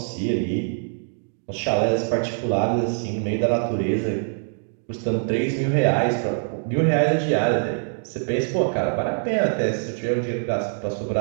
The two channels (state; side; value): silent; left; digital silence